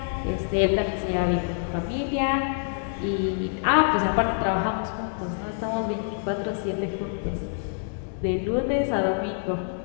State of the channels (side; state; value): right; silent; digital silence